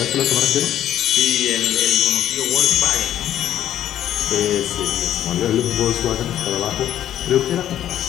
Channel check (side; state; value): right; quieter; 11.4 dB